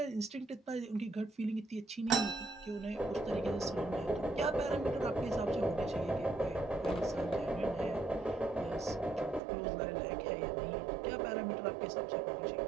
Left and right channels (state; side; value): drops out; left; at 9.4 s